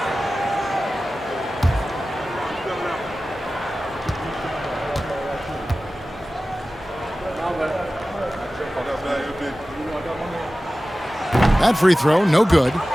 That free throw, no good.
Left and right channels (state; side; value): normal; both; correlation 0.96